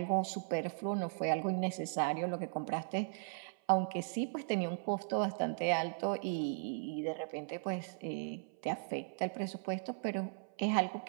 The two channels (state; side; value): silent; left; 53 dB below the other